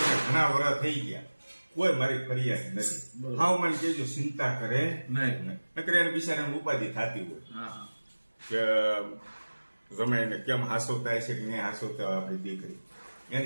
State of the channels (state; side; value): inverted; both; correlation -1.00